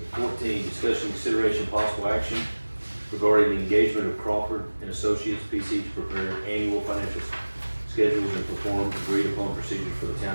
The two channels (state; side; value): inverted; both; correlation -1.00